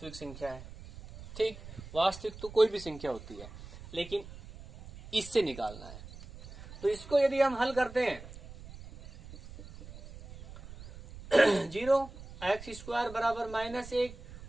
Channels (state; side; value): noise; right; rumble, 15 dB below the sound